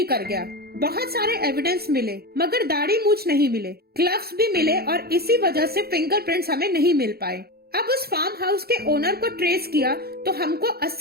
कर गया। बहुत सारे एविडेंस मिले, मगर दाढ़ी मूछ नहीं मिले। ग्लव्स भी मिले और इसी वजह से फिंगरप्रिंट्स हमें नहीं मिल पाए। अब उस फार्म हाउस के ओनर को ट्रेस किया तो हमको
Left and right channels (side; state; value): left; late; 0.45 ms